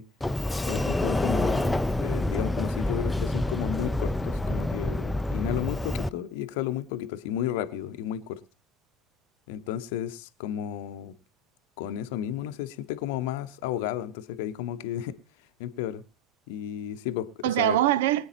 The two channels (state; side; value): normal; both; correlation 0.42